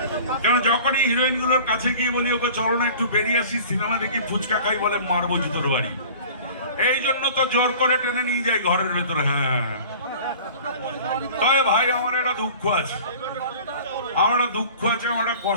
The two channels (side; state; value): both; inverted; correlation -0.43